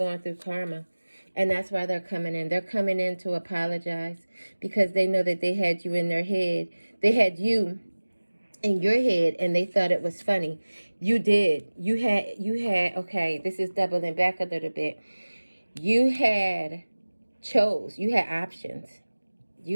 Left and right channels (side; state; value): both; inverted; correlation -1.00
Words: through karma. And that's why they're coming in. They're coming in to apologize because they know that they had you in their head. They had you in your head and they thought it was funny. You did. You had, okay, this is doubling back a little bit. You had options. You had options.